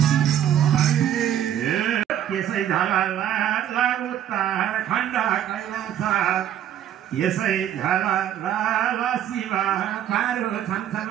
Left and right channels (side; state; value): left; quieter; 10.6 dB